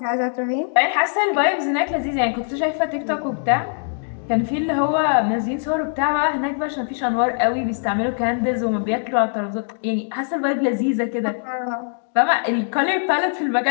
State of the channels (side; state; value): right; silent; 65 dB below the other